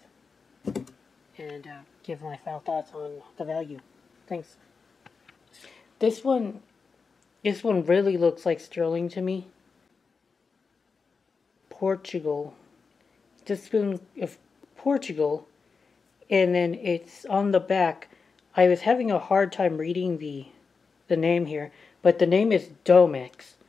and give my final thoughts on the value. Thanks. This one really looks like sterling to me. Portugal. The spoon of Portugal, and then it's on the back. I was having a hard time reading the name here, but the name is Domex.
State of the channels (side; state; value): right; quieter; 5.0 dB